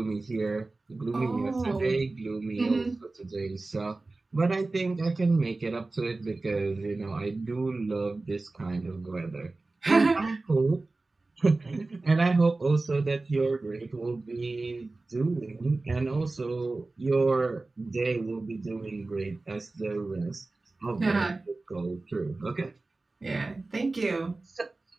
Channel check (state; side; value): quieter; left; 3.3 dB